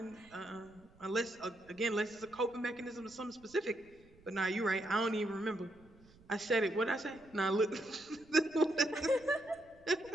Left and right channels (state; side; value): noise; right; rumble, 26 dB below the sound